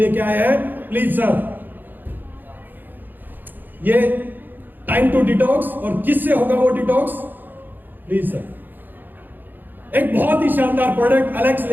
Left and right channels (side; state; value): left; late; 0.090 ms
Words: आए हैं। प्लीज सर, ये टाइम टू डिटॉक्स। और किससे होगा वो डिटॉक्स? Please sir. एक बहुत ही शानदार प्रोडक्ट एलेक्स